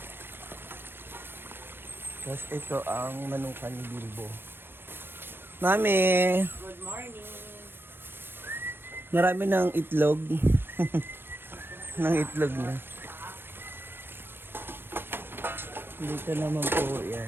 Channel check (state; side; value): late; left; 0.10 ms